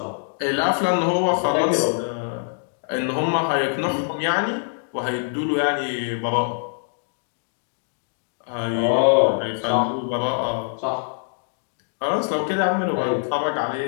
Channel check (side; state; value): right; silent; digital silence